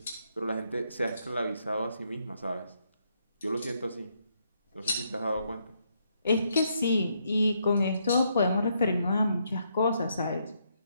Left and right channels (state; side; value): inverted; both; correlation -0.76